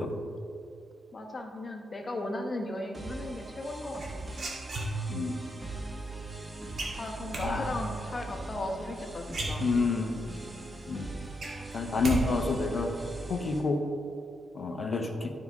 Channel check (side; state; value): both; normal; correlation 0.81